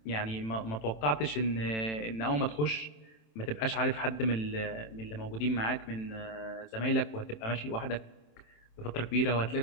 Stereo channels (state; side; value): late; right; 27 ms